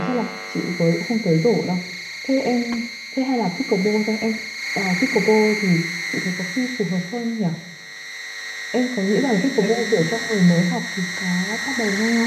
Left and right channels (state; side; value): identical; both; correlation 1.00